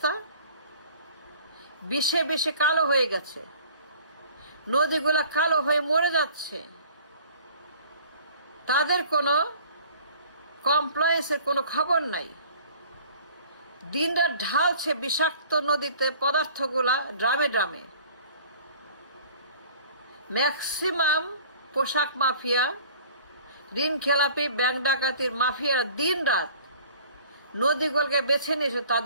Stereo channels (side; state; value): both; inverted; correlation -0.49